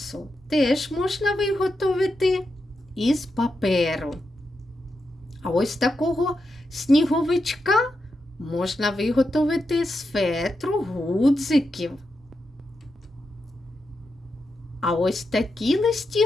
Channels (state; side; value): normal; both; correlation 0.86